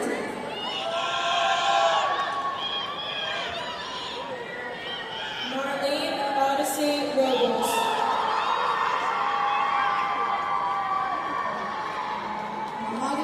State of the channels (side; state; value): both; identical; correlation 1.00